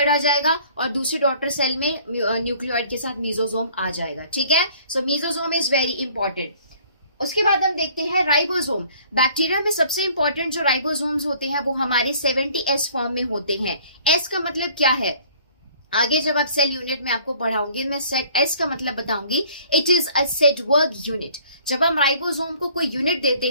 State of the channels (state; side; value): inverted; both; correlation -0.55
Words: आ जाएगा और दूसरी डॉटर सेल में न्यूक्लियोइड के साथ मीजोजोम आ जाएगा। ठीक है, सो मीजोजोम इज वेरी इंपॉर्टेंट। उसके बाद हम देखते हैं राइबोसोम। बैक्टीरिया में सबसे इंपॉर्टेंट जो राइबोसोम्स होते हैं वो हमारे 70S फॉर्म में होते हैं। एस का मतलब क्या है, आगे जब आप सेल यूनिट में आपको पढ़ाऊंगी मैं एस का मतलब बताऊंगी। It is a Svedberg unit. जब हम राइबोसोम को कोई यूनिट देते